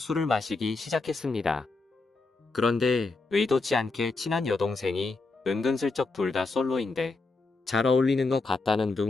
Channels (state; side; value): quieter; right; 3.7 dB